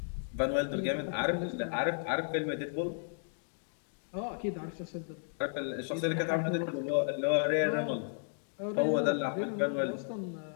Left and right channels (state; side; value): silent; right; digital silence